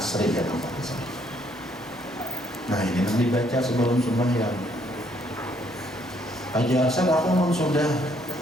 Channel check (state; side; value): normal; both; correlation 0.68